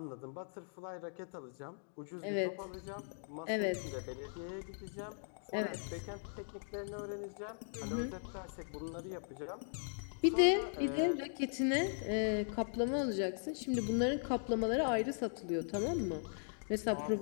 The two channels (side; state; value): right; silent; digital silence